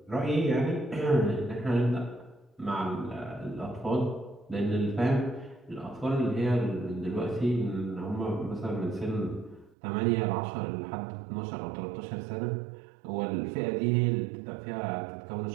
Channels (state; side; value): drops out; left; at 9.8 s